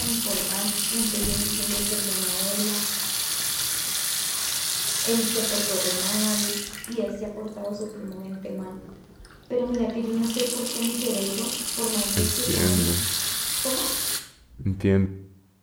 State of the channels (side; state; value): both; identical; correlation 1.00